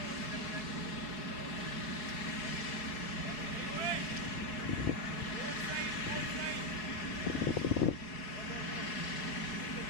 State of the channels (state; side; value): late; right; 4.7 ms